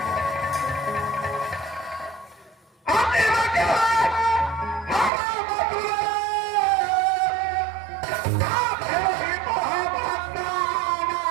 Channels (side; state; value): left; drops out; at 5.1 s